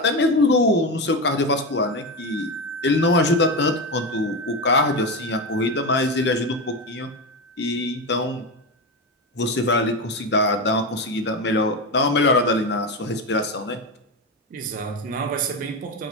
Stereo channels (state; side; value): normal; both; correlation 0.17